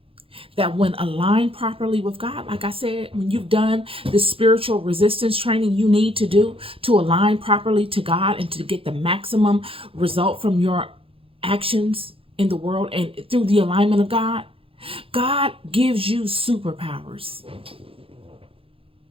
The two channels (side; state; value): left; late; 0.27 ms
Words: that when aligned properly with God, like I said, when you've done the spiritual resistance training you need to do to align properly to God and to get the maximum result from your actions in the world and through the alignment of God, God gives you superpowers.